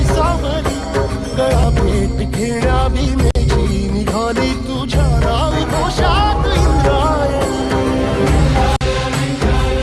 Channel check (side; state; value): both; identical; correlation 1.00